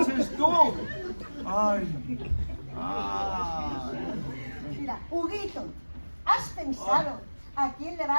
tú. Ay. Mira, Huguito, ¿has pensado a quién le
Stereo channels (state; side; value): inverted; both; correlation -1.00